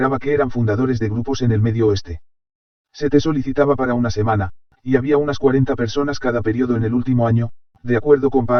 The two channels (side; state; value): both; identical; correlation 1.00